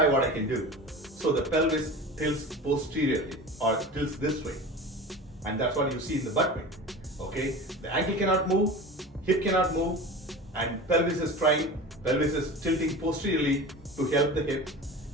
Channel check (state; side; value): normal; both; correlation 0.34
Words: what I can do. So the pelvis tilts posteriorly or tilts this way. And that's what you see in the butt wink. Okay, the ankle cannot move, hip cannot move, and pelvis is trying, pelvis is tilting posteriorly to help the hip,